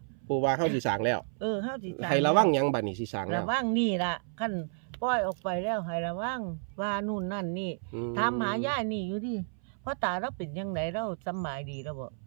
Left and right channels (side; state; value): left; silent; 57 dB below the other